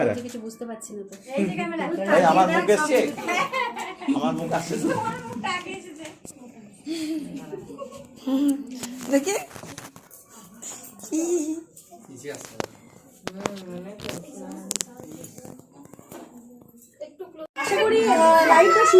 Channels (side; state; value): both; identical; correlation 1.00